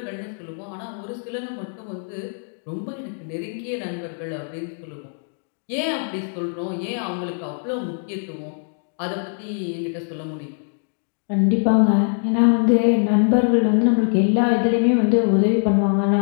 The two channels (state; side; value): silent; right; 64 dB below the other